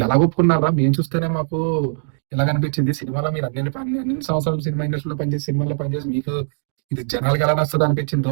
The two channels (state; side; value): silent; left; digital silence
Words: ఎలా ఒప్పుకున్నారా? మేము చూస్తేనే మాకు ఎలా అనిపించింది. సినిమాలో మీరు అన్ని సంవత్సరాలు సినిమా ఇండస్ట్రీలో సినిమాలో పనిచేసి మీకు ఇది జనాలకి ఎలా నచ్చదు అనిపించిందో